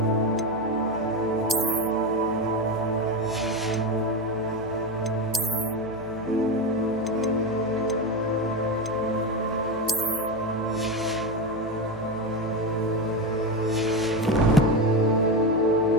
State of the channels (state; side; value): noise; right; hum, 20 dB below the sound